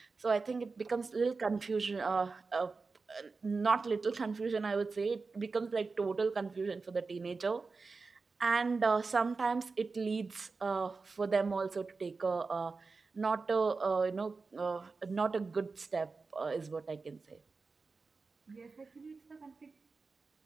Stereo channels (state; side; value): quieter; left; 4.2 dB